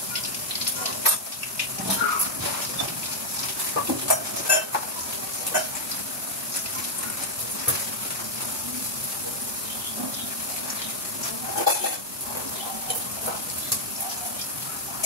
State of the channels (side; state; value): both; normal; correlation -0.04